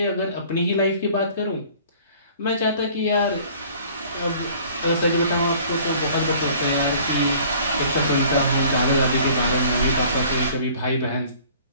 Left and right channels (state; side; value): inverted; both; correlation -0.51